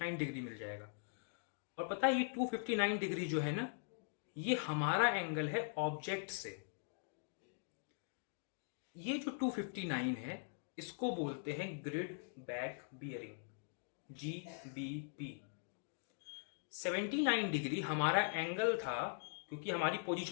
डिग्री मिल जाएगा। और पता है ये 259 डिग्री जो है ना, ये हमारा एंगल है ऑब्जेक्ट से। ये जो 259 है इसको बोलते हैं grid back bearing, GBP। 79 degree हमारा एंगल था, क्योंकि हमारी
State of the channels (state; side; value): silent; right; digital silence